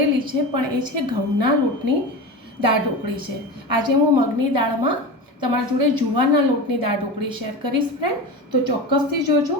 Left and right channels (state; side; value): normal; both; correlation 0.26